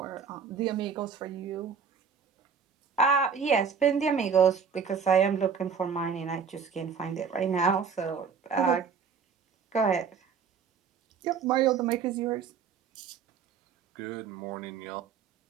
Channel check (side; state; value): left; quieter; 6.3 dB